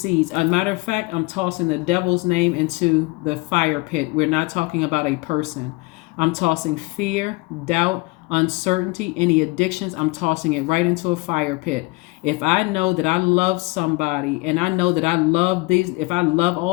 As a matter of fact, I'm tossing the devil's name into the fire pit. We're not talking about a person. I'm tossing fear, doubt, uncertainty, any addictions. I'm tossing it right into a fire pit. If I know that I love somebody and I know that I love if I love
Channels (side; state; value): right; quieter; 25.3 dB